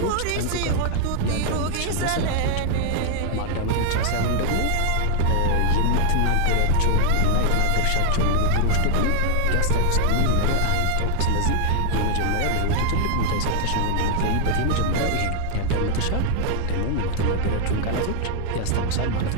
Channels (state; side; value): different; both; correlation 0.00